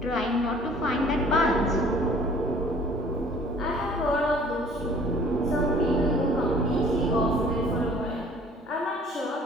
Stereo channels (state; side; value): normal; both; correlation 0.52